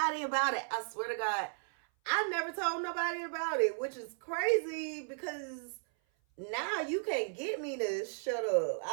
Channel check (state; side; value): silent; left; 55 dB below the other